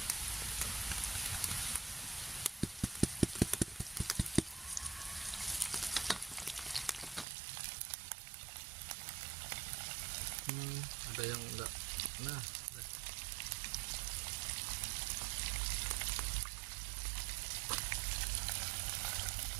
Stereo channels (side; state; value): left; drops out; at 7.2 s